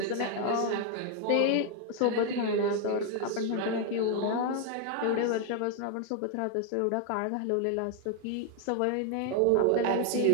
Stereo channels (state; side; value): different; both; correlation 0.01